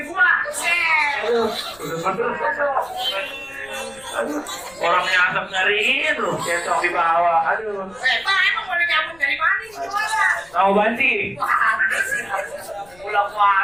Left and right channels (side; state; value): left; noise; rumble, 26 dB below the sound